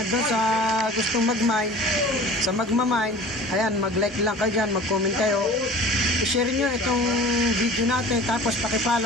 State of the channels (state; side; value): normal; both; correlation 0.42